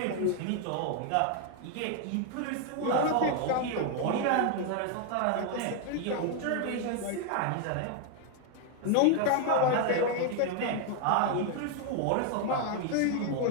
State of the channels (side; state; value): both; different; correlation 0.00